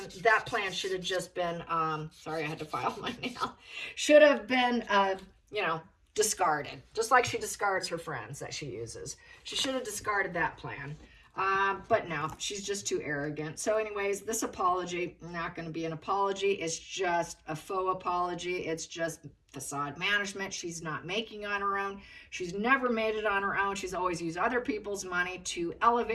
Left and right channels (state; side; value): identical; both; correlation 1.00